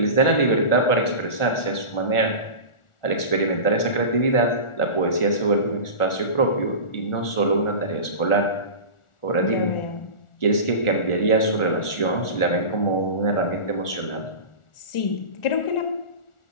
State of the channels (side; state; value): right; late; 1.4 ms